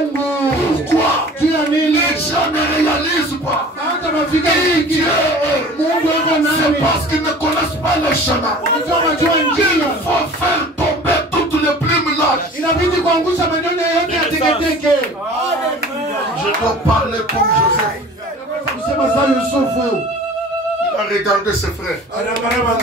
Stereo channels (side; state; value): both; normal; correlation 0.43